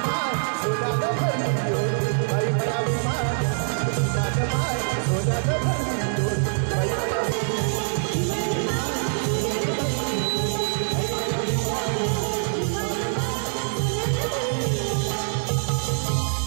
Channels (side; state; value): left; silent; digital silence